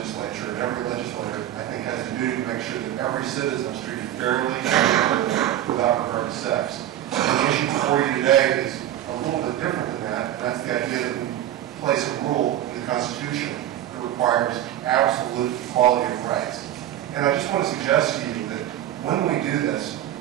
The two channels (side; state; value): left; quieter; 12.3 dB